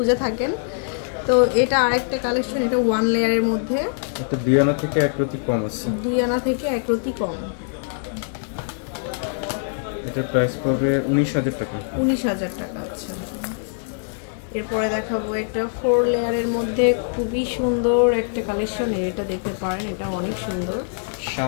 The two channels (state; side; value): silent; right; 61 dB below the other